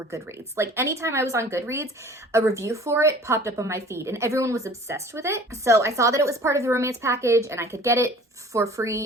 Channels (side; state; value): both; normal; correlation 0.47